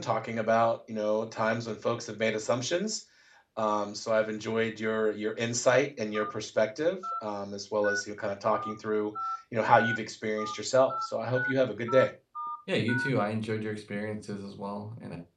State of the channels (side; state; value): both; identical; correlation 1.00